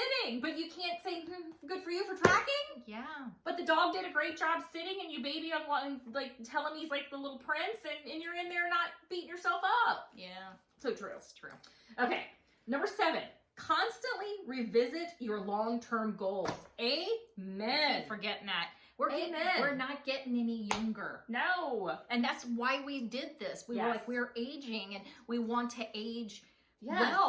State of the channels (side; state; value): both; identical; correlation 1.00